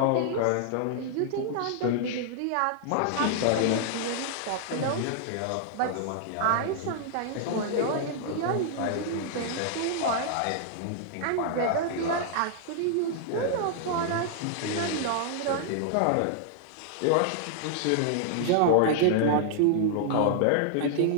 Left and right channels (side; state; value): both; different; correlation -0.01